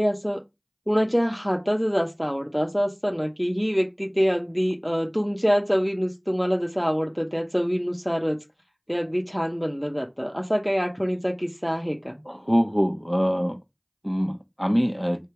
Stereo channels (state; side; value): identical; both; correlation 1.00